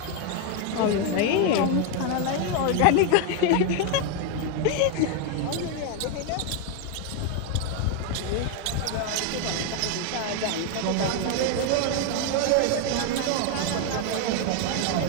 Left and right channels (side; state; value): both; different; correlation 0.01